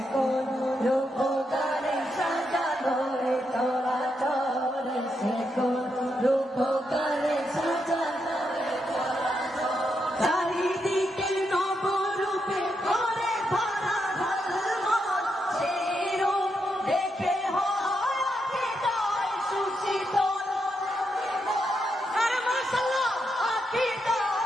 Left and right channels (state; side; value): normal; both; correlation 0.82